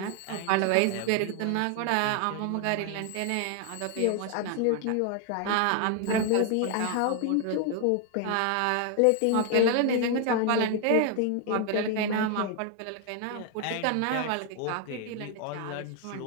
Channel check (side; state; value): both; different; correlation 0.00